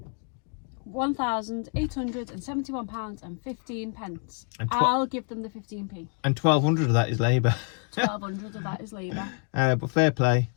£1,871.15. And I'll give them the 15p. And 1,200 of that is labour. 1,200 of that is labour. But fair play,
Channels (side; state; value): right; quieter; 39.6 dB